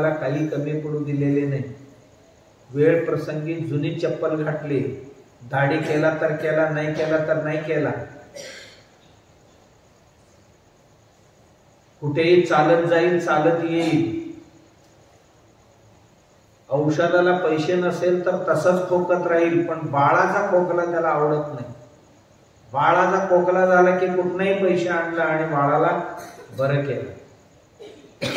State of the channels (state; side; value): identical; both; correlation 1.00